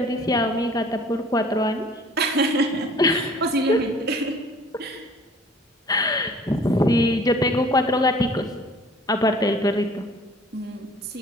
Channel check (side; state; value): both; normal; correlation 0.51